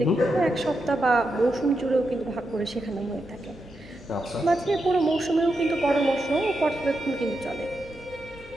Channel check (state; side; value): normal; both; correlation 0.86